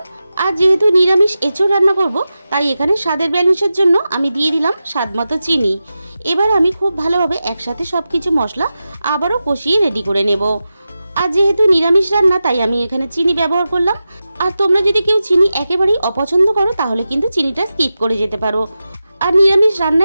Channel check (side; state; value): both; inverted; correlation -0.92